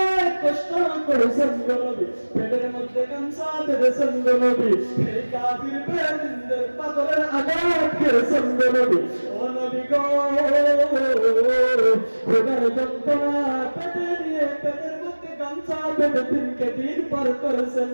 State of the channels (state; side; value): inverted; both; correlation -1.00